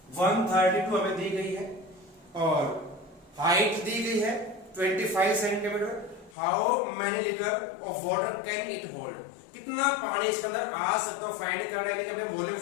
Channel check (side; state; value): right; drops out; at 6.4 s